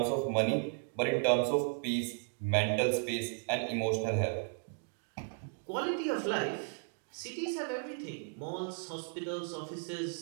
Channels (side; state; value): left; silent; 54 dB below the other